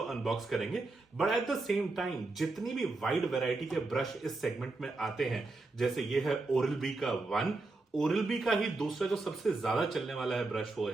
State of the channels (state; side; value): quieter; left; 3.3 dB